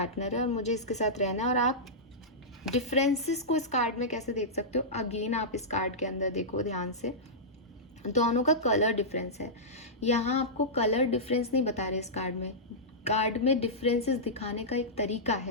है और मुझे इसके साथ रहना है। और आप डिफरेंसेस को इस कार्ड में कैसे देख सकते हो, अगेन आप इस कार्ड के अंदर देखो ध्यान से, दोनों का कलर डिफरेंस है। यहाँ आपको कलर डिफरेंस नहीं बता रहे इस कार्ड में डिफरेंसेस दिखाने का एक तरीका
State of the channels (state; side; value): normal; both; correlation -0.13